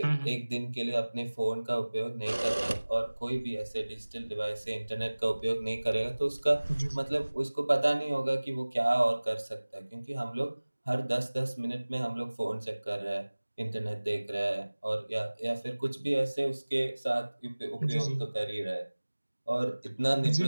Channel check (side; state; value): both; inverted; correlation -1.00